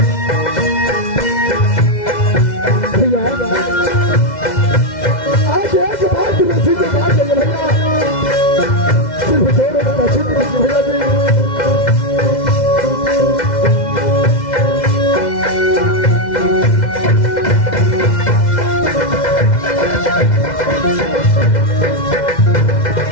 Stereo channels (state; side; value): late; right; 2.0 ms